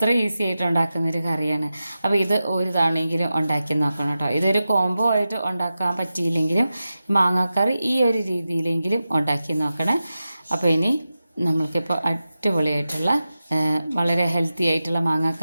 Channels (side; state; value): both; inverted; correlation -0.93